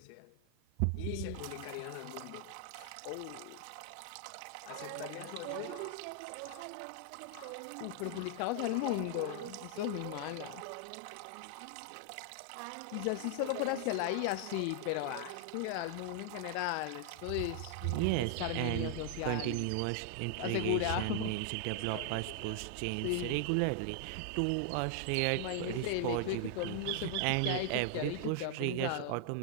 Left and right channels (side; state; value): both; different; correlation 0.00